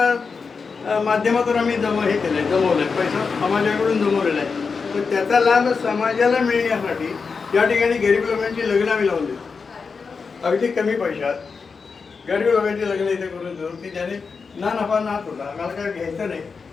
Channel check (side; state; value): right; quieter; 5.1 dB